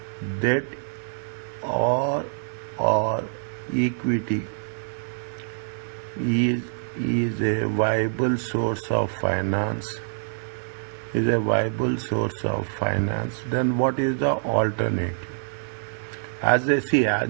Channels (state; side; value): silent; left; digital silence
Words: debt or equity is a viable source of finance, then what is the alternative? As they see,